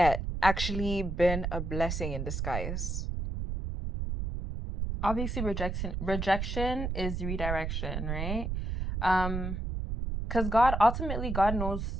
actually been a blessing in disguise? Obviously rejection is redirection, right? Because God knows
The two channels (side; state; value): right; noise; rumble, 3 dB below the sound